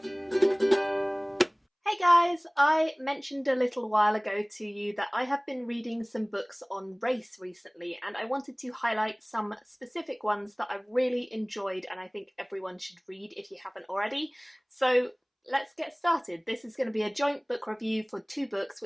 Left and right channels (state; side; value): identical; both; correlation 1.00